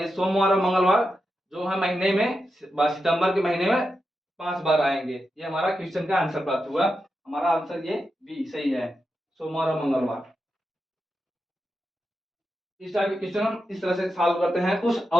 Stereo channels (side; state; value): both; normal; correlation 0.88